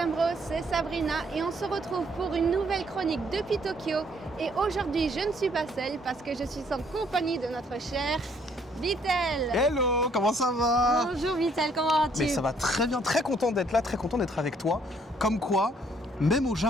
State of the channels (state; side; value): normal; both; correlation 0.65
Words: c'est Sabrina et on se retrouve pour une nouvelle chronique depuis Tokyo. Et aujourd'hui, je ne suis pas seule parce que je suis en compagnie de notre cher Vitel. Hello, comment ça va? Bonjour Vitel, comment vas-tu? Mais ça va très bien, très content d'être là, très content d'être avec toi. Comme quoi, même au